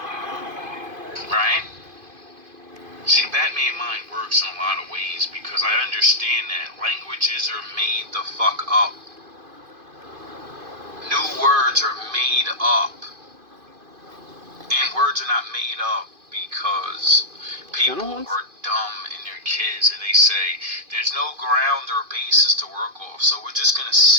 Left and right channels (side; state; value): left; late; 2.5 ms